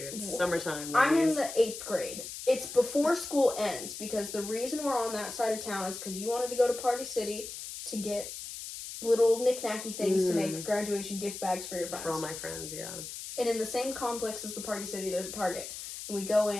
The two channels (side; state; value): left; noise; hiss, 9 dB below the sound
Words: Summertime. I'm in ladies. the 8th grade. It's before school ends because the reason we're on that side of town is because you wanted to go to Party City to get little knick-knacky things to make graduation gift bags for your friends. For all my friends, yeah. And in the same complex as the Party City, there's a Target. And we go